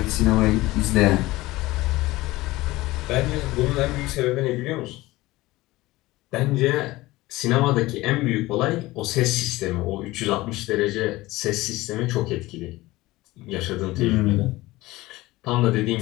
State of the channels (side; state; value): right; quieter; 19.1 dB